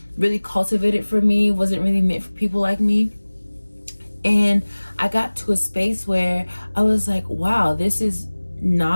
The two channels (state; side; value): inverted; both; correlation -1.00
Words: really cultivated for me, wasn't really meant for people like me. And I got to a space where I was like, wow, this is